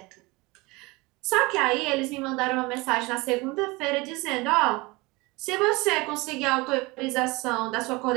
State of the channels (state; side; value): quieter; left; 23.9 dB